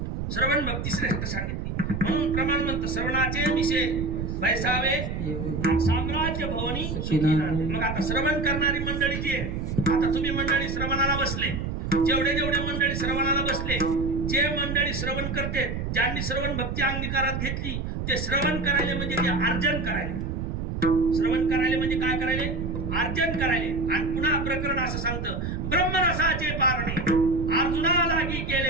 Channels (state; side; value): noise; right; rumble, 4 dB below the sound